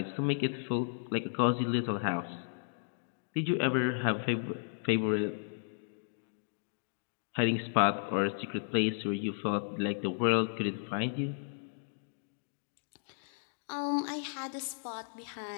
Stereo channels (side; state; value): right; silent; digital silence